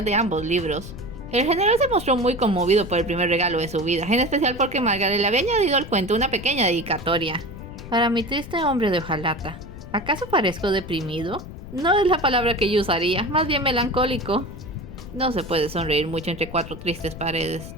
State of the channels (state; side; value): noise; left; rumble, 13 dB below the sound